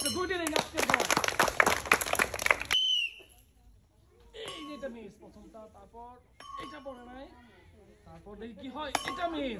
2টি রিং আজকে পড়ে। এই যে এটা মিস প্রথমটা, তারপর এটা পড়ে নাই, তারপর দেখি কি হয়। এটা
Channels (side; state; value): both; identical; correlation 1.00